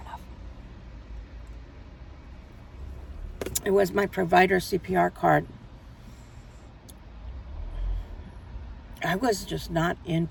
enough. It was my provider CPR card. I was just not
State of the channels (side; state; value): both; identical; correlation 1.00